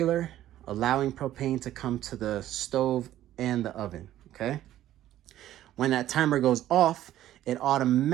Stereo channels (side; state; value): left; quieter; 13.1 dB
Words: allowing propane to come to the stove and the oven, okay? When that timer goes off, it